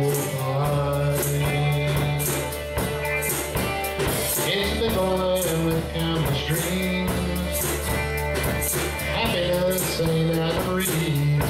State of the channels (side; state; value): both; identical; correlation 1.00